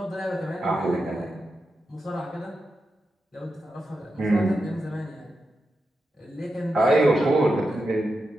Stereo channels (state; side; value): normal; both; correlation 0.88